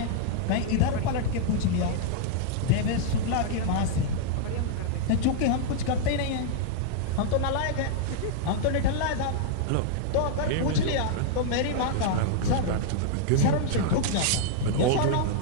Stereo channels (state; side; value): different; both; correlation -0.01